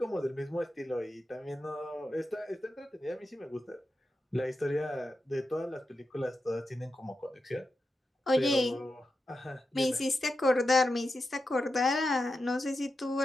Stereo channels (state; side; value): normal; both; correlation 0.89